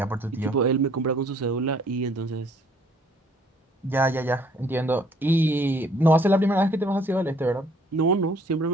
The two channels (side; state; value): both; normal; correlation 0.60